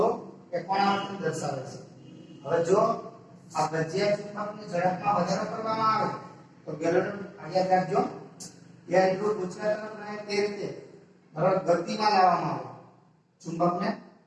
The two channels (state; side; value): identical; both; correlation 1.00